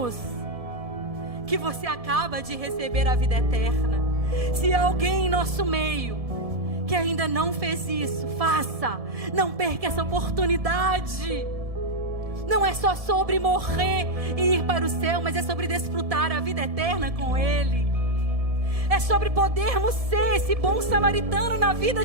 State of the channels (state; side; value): late; left; 1.7 ms